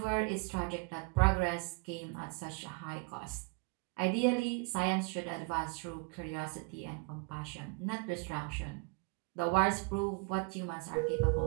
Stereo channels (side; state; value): left; quieter; 31.1 dB